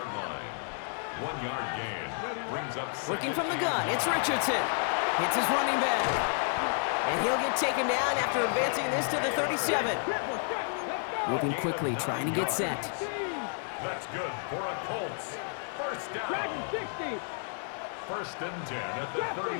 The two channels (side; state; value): right; silent; 57 dB below the other